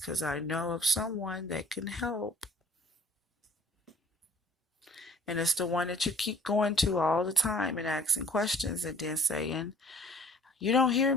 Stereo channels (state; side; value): normal; both; correlation 0.54